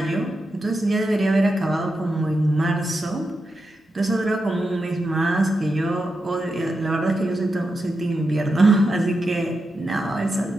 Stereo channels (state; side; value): normal; both; correlation 0.88